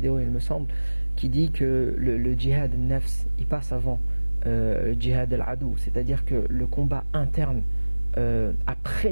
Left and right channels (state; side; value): inverted; both; correlation -1.00